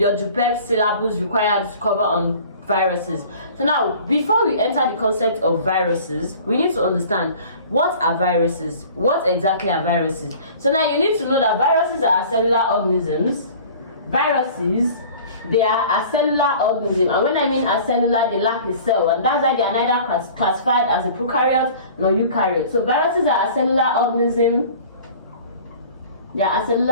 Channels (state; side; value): inverted; both; correlation -0.45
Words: JUPEB syllabus requires to cover on viruses. So now, before we enter the concept of viruses, we need to understand what are viruses. What exactly are viruses? So now you need to know that viruses are cellular organisms. Viruses, they are a cellular organism, and when I mean a cellular, they lack a cell, and that's why they are neither classified as a prokaryote nor eukaryote. So viruses are a cellular organism. They are a